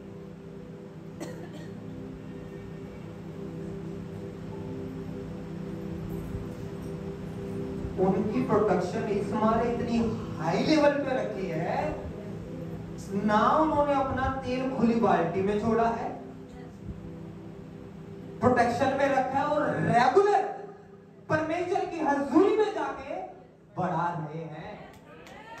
उनकी प्रोडक्शन इस मारे इतनी हाई लेवल पे रखी है ना, उन्होंने अपना तेल खुली बाल्टी में छोड़ा है, प्रोटेक्शन में रखा है और रेगुलर परमेश्वर की हजूरी में जाके बढ़ा रहे हैं।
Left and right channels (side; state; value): both; identical; correlation 1.00